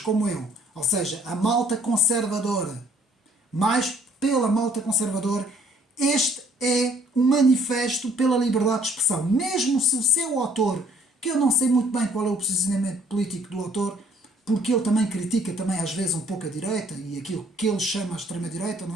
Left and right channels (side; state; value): both; normal; correlation 0.61